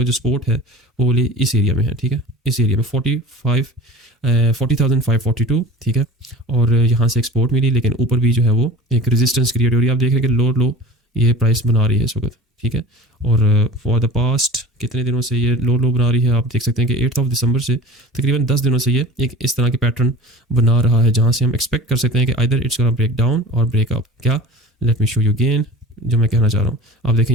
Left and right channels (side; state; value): both; normal; correlation 0.39